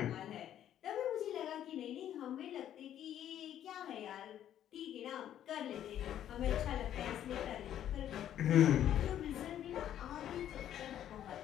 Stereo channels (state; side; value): quieter; right; 10.9 dB